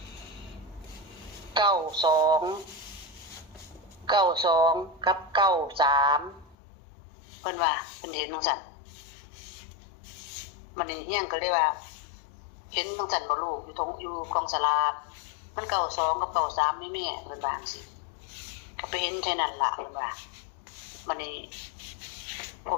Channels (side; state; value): right; drops out; at 6.6 s